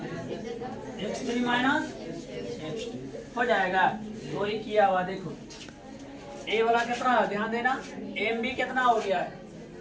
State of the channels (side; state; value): both; identical; correlation 1.00